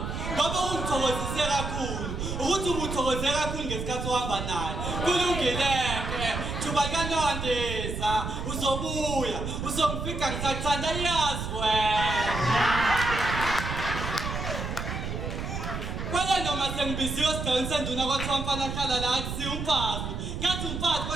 ngoba ungithokozise kakhulu ukuthi ubuthokoze kakhulu ngesikhathi uhamba naye. Kulungileke thuba likanondiza uzobuya uzongifika ngisakuthanda. Yazi wena. Kwala noma sengibiziwe esigcawini senduna kwathiwa mfana hlala la akusiyo umfazi. Ngathi umfazi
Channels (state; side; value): noise; right; rumble, 4 dB below the sound